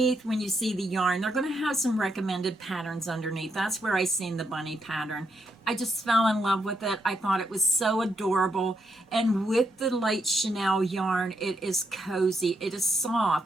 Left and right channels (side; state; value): both; normal; correlation 0.80